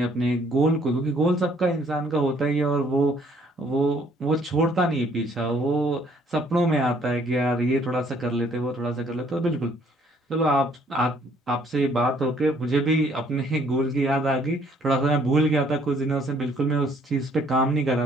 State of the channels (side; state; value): both; normal; correlation 0.63